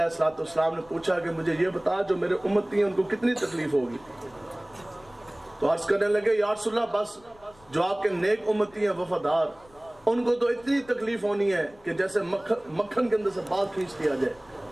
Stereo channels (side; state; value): left; noise; rumble, 27 dB below the sound